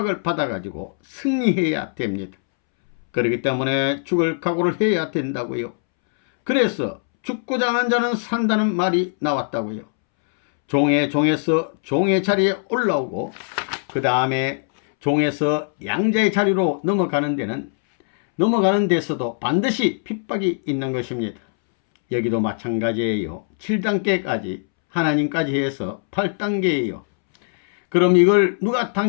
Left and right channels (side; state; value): right; silent; 65 dB below the other